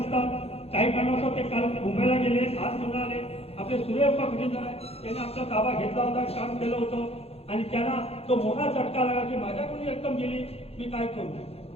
काही कारणास्तव ते काल मुंबईला गेले, आज पुन्हा आले. आपले सूर्यप्पा खजिनदार आहे, त्याने आपला ताबा घेतला होता, काम केलं होतं आणि त्यांना तो मोठा झटका लागला की माझ्याकडून रक्कम गेली, मी काय करू.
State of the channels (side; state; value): right; late; 0.29 ms